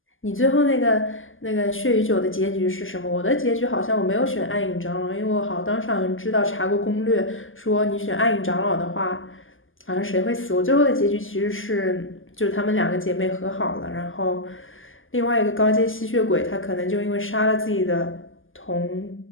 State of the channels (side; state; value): right; late; 0.58 ms